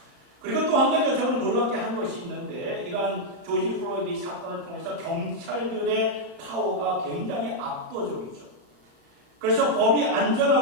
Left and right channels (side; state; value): left; late; 34 ms